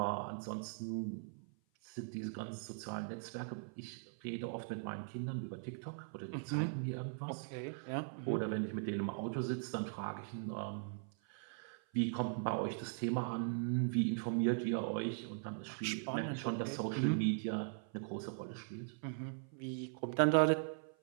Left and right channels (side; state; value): left; silent; 51 dB below the other